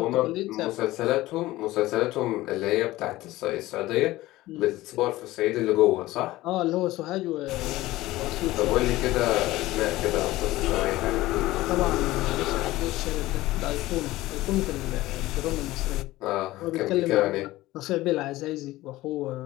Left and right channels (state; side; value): quieter; right; 17.5 dB